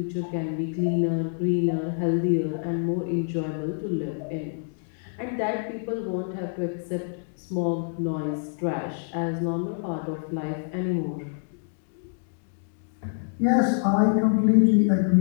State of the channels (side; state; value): right; silent; digital silence